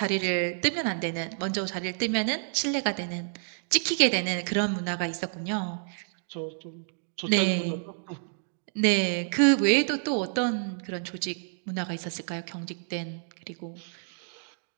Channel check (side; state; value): left; silent; 59 dB below the other